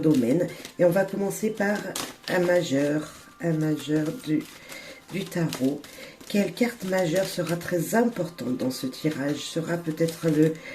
domaines. Et on va commencer par un majeur du tarot. Quelle carte majeure sera très importante dans ce tirage? Sera peut-être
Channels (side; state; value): both; identical; correlation 1.00